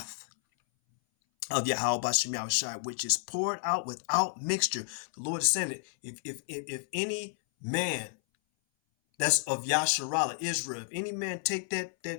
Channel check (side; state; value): right; silent; 57 dB below the other